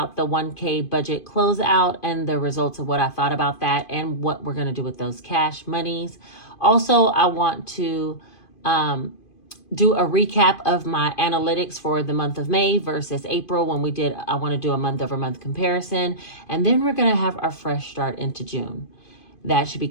the 1K budget closeout and the results of what I thought about that and what we're going to do with those cash monies. Also, I want to do a recap of my analytics for the month of May versus April when I want to do a month over month comparison. And then we're going to have our fresh start into June. That should be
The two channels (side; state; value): right; late; 2.5 ms